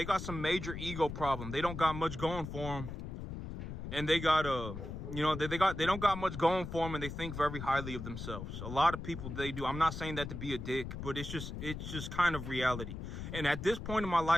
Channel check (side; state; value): left; noise; rumble, 7 dB below the sound